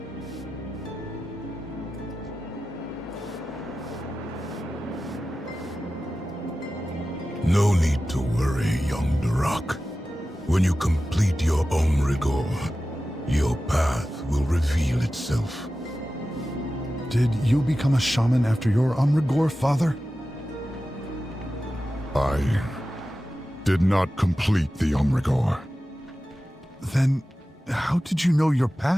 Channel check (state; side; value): normal; both; correlation 0.94